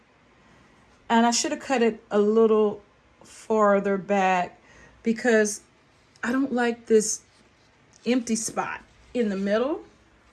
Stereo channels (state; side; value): identical; both; correlation 1.00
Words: and I should have cut it a little farther back because I don't like this empty spot in the middle.